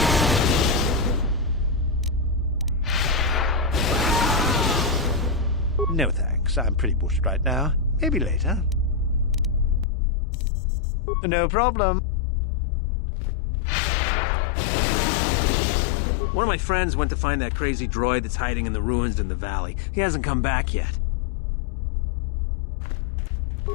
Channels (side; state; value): right; drops out; at 9.9 s